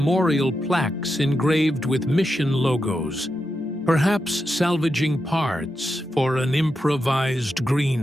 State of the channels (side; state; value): both; normal; correlation 0.87